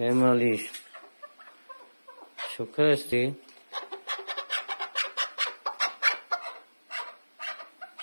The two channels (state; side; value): inverted; both; correlation -1.00